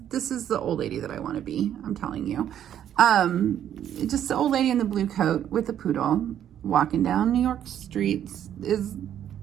is the old lady that I want to be, I'm telling you. Just the old lady in the blue coat with the poodle walking down New York streets is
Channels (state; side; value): quieter; left; 10.3 dB